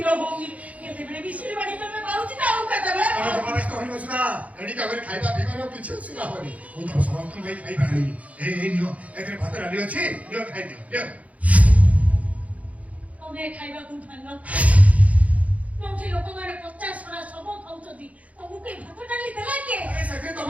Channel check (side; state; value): left; late; 0.068 ms